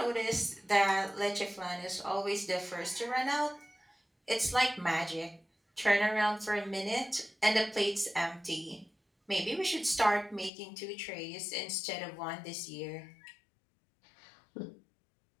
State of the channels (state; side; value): drops out; right; at 10.5 s